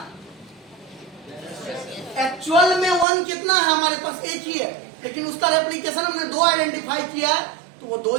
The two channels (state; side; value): drops out; left; at 3.1 s